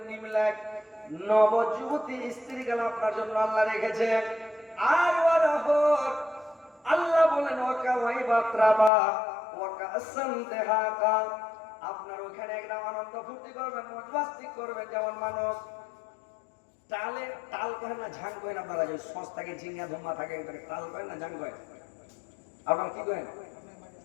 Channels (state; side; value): drops out; right; at 8.9 s